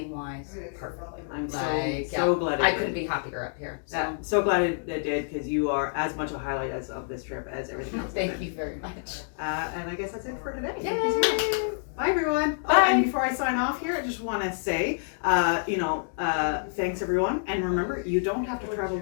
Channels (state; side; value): silent; right; digital silence